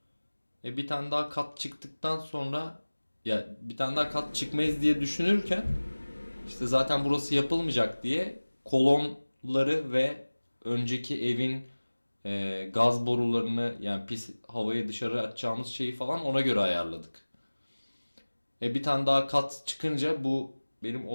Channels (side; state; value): both; inverted; correlation -1.00